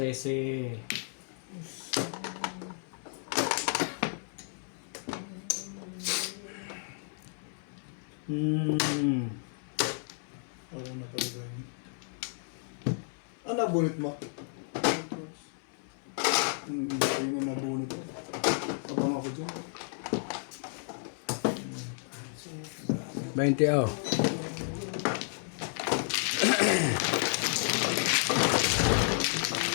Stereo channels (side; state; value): right; silent; 56 dB below the other